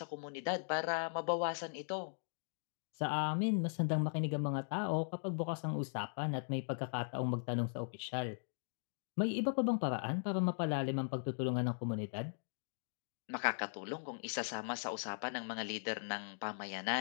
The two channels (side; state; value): right; silent; digital silence